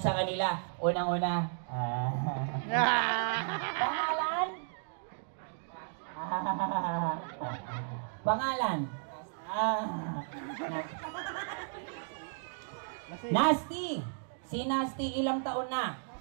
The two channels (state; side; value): silent; left; digital silence